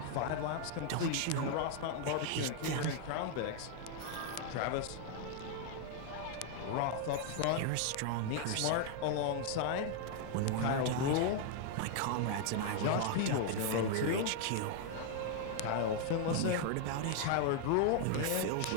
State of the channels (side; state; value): both; different; correlation 0.00